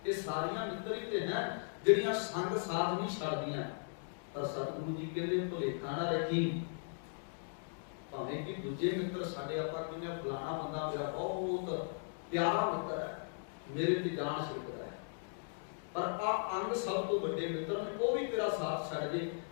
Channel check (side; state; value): right; silent; digital silence